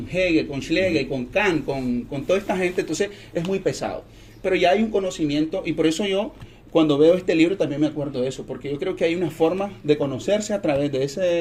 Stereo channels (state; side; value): identical; both; correlation 1.00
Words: Hegel, con Schlegel, con Kant, con toda esta gente, entonces es muy pesado. Pero ya hay un conocimiento, y por eso yo, cuando veo este libro, también me acuerdo de eso, porque yo creo que hay una forma de conocerse a través